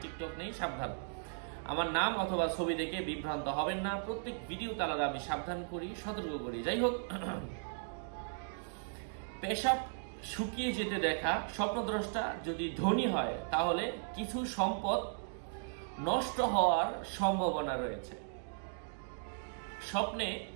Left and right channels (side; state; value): left; silent; digital silence